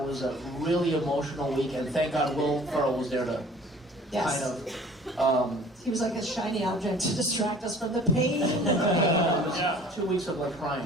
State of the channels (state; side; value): normal; both; correlation 0.49